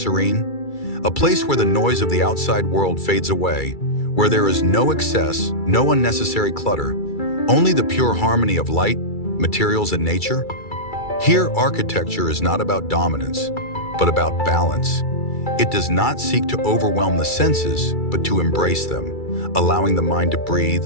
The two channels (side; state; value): right; late; 2.3 ms